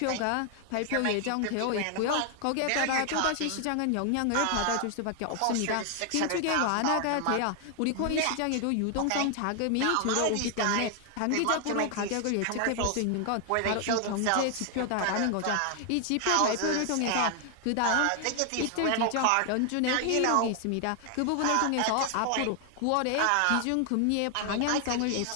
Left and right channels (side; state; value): both; different; correlation 0.00